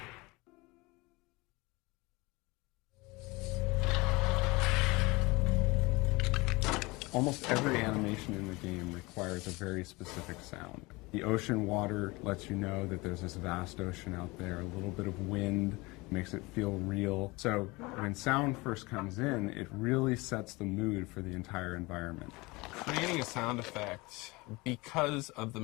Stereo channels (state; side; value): quieter; right; 23.7 dB